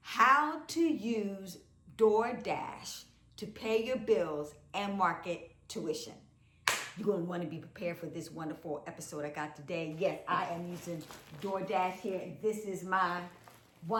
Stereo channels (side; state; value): both; identical; correlation 1.00